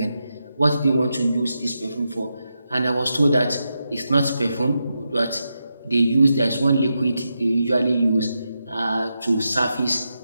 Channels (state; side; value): inverted; both; correlation -0.87